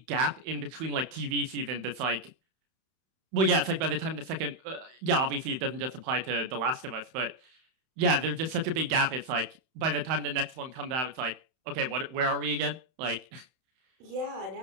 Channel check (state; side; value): late; left; 31 ms